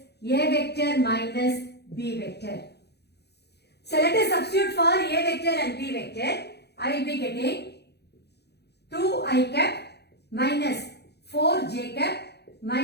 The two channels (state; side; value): late; right; 0.48 ms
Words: A vector minus B vector. So let us substitute for A vector and B vector. I will be getting 2i cap minus 4j cap